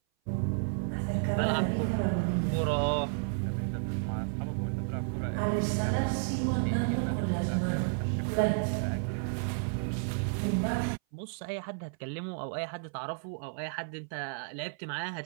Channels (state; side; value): silent; left; 57 dB below the other